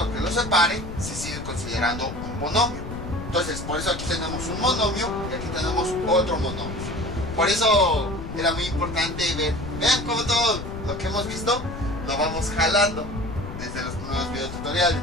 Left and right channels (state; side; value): noise; left; rumble, 9 dB below the sound